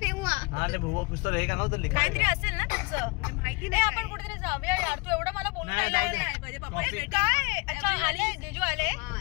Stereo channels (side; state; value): right; quieter; 27.9 dB